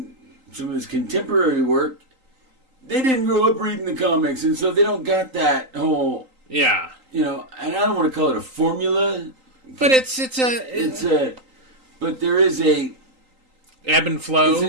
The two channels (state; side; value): late; left; 3.8 ms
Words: some of his contemporary work, they didn't grow up reading the comics, and so they don't got that whole. Yeah. And I don't want to call it a formula. But but there is a ebb and flow. It's a